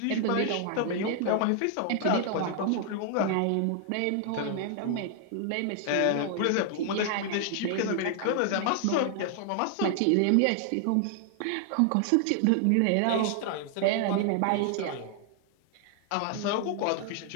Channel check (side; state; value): both; different; correlation 0.00